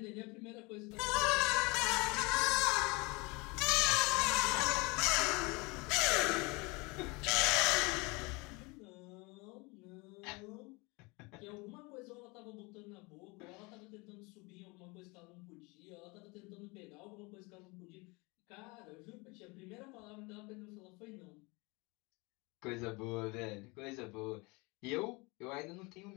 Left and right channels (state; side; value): quieter; right; 26.7 dB